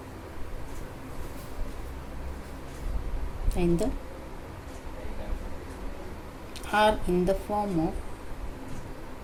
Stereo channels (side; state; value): both; identical; correlation 1.00